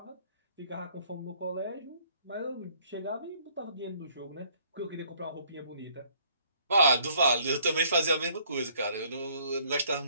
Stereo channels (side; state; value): both; inverted; correlation -0.63